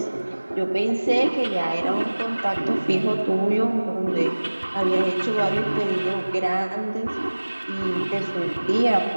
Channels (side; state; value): both; inverted; correlation -1.00